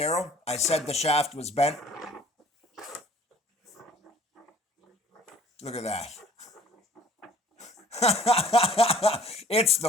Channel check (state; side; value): normal; both; correlation 0.53